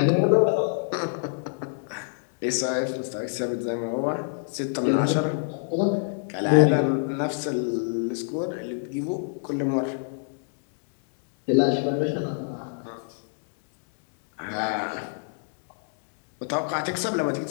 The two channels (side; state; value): right; silent; digital silence